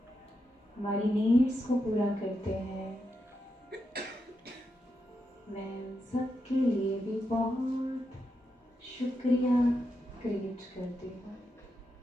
हमारी नीड्स को पूरा करते हैं। मैं सबके लिए भी बहुत शुक्रिया क्रिएट करती हूँ।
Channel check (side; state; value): both; normal; correlation 0.85